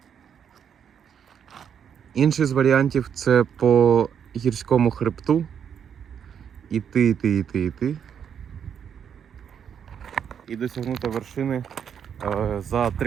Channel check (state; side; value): quieter; left; 8.0 dB